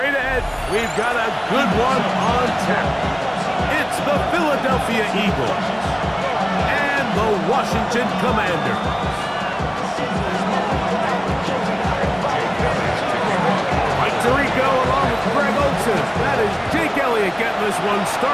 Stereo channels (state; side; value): identical; both; correlation 1.00